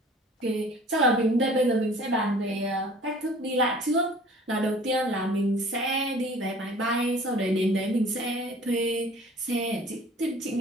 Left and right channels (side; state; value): both; normal; correlation 0.48